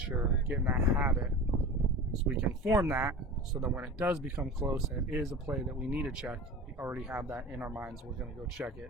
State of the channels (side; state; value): both; normal; correlation 0.33